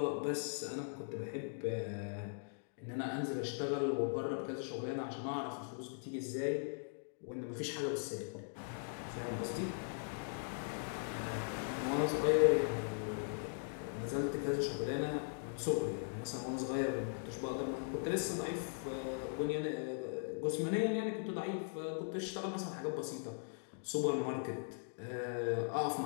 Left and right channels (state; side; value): silent; right; digital silence